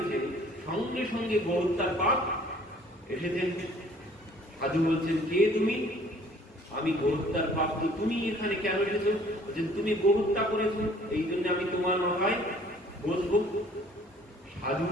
সঙ্গে সঙ্গে গোহত্যার পাপ এসেছেন। সাধু বলছেন, কে তুমি? আমি গোহত্যার পাপ। তো তুমি এখানে কেন এসেছো? বলছেন, তুমি গোহত্যা করেছো, এই জন্য আমি তোমার মাথায় বসবো। সাধু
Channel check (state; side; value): normal; both; correlation 0.56